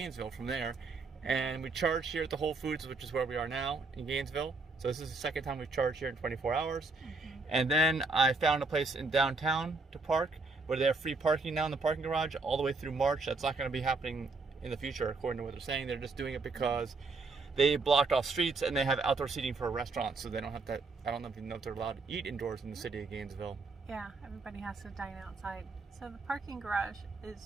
from there. And we charged here at the Whole Foods, which is where we are now in Gainesville. So this is the second time we've charged here in 24 hours. Mm-hmm. And then I found a place in downtown to park where they have free parking now in the parking garage all the way through March. That's not going to be happening in the future, according to what they're saying. They're just doing it because they blocked off streets and they have outdoor seating for restaurants, so they don't have to. I don't even know if they're allowed to eat indoors in the city of Gainesville. Yeah, everybody has to dine outside. So the parking garage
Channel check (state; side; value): quieter; left; 3.8 dB